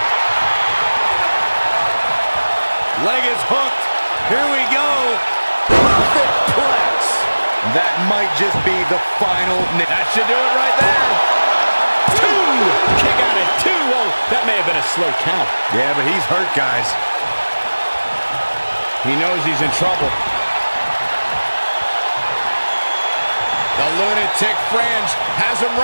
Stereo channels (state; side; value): inverted; both; correlation -1.00